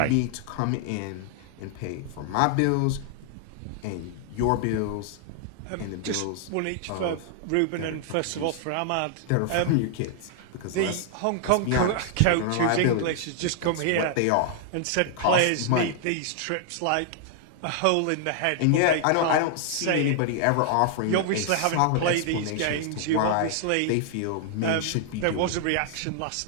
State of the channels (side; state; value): both; different; correlation 0.00